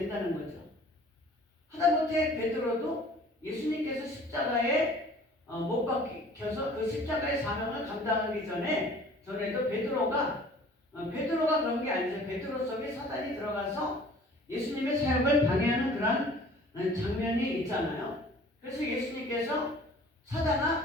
거죠. 하다못해 베드로도 예수님께서 십자가에 못 박혀서 그 십자가의 사명을 감당하기 전에도 베드로가 그런 게 아니죠. 베드로 속에 사단이 들어가서 예수님의 사역을 방해하는 그런 장면이 있잖아요. 그래서 예수님께서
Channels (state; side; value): normal; both; correlation 0.49